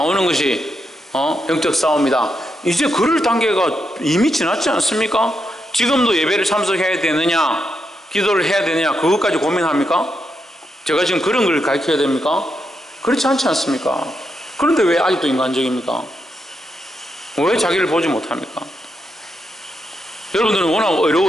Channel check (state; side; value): normal; both; correlation 0.83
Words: 것이 영적 싸움이다. 이제 그럴 단계가 이미 지났지 않습니까? 지금도 예배를 참석해야 되느냐 기도를 해야 되느냐 그것까지 고민합니까? 제가 지금 그런 걸 가르쳐야 됩니까? 그렇지 않지 않습니까? 그런데 왜 아직도 인간적입니까? 왜 자기를 보지 못합니까? 여러분들은 워낙